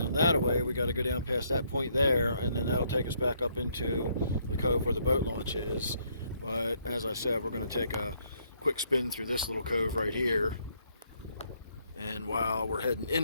that way. We got to go down past that point there, and then that'll take us back up into the cove where the boat launch is. But as I said, we're going to take a quick spin through this little cove right here, and while we're heading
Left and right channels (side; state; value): both; inverted; correlation -0.70